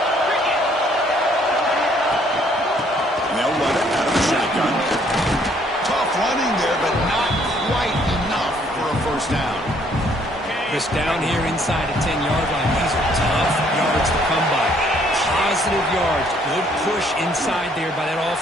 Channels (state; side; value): normal; both; correlation 0.64